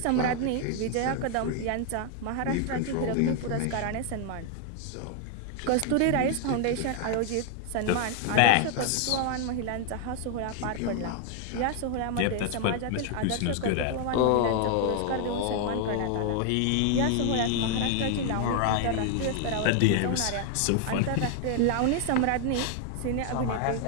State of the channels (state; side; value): different; both; correlation 0.00